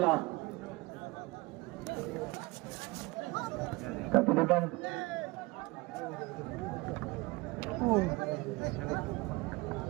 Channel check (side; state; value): left; quieter; 23.1 dB